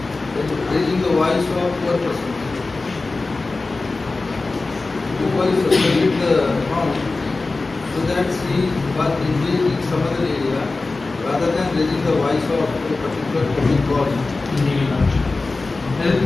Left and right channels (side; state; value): right; quieter; 3.5 dB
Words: raising the voice of poor persons. Because you selected the account so that she was engaged in some other area rather than raising the voice of a particular public cause. Indeed, Your Lordship.